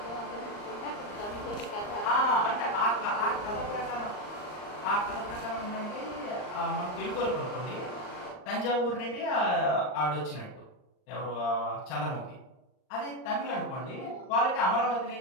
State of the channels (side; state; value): right; late; 39 ms